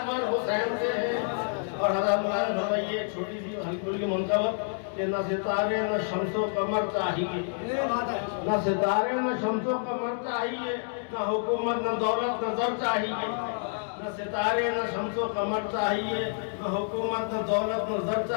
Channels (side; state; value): right; silent; digital silence